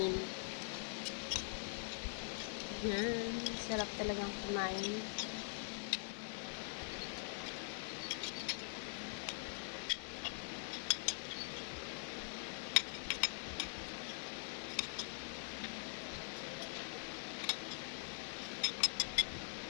Yan, sarap talagang kumain.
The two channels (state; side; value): silent; right; digital silence